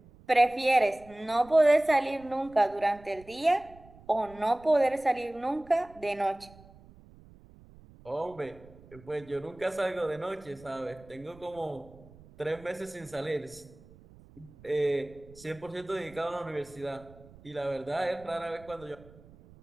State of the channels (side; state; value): right; noise; rumble, 23 dB below the sound